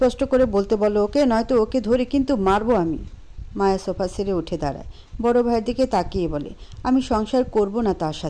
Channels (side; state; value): both; identical; correlation 1.00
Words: করে বলতে বলো ওকে, নয়তো ওকে ধরে কিন্তু মারবো আমি। মায়া সোফা ছেড়ে উঠে দাঁড়ায়, বড় ভাইয়ের দিকে তাকিয়ে বলে, আমি সংসার করব না তার